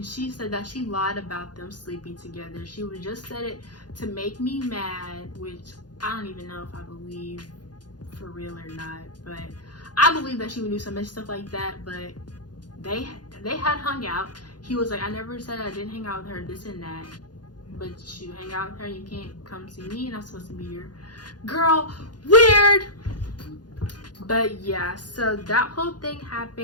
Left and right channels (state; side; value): late; right; 0.69 ms